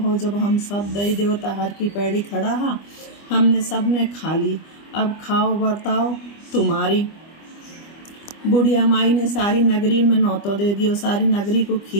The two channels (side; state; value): right; late; 25 ms